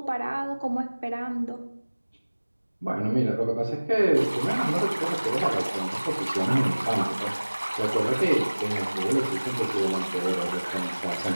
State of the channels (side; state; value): both; inverted; correlation -1.00